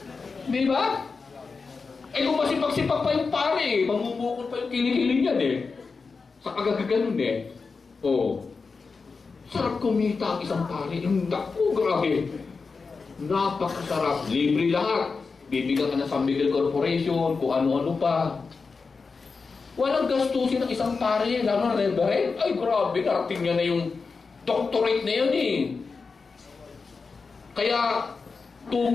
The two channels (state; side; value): quieter; right; 4.6 dB